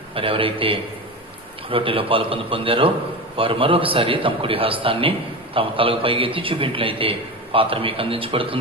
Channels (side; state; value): both; normal; correlation 0.24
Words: మరి ఎవరైతే రొట్టెలో పాలు పొందారో వారు మరొకసారి తమ కుడి హస్తాన్ని తమ తలకు పైకెత్తి చూపించినట్లయితే పాత్ర మీకు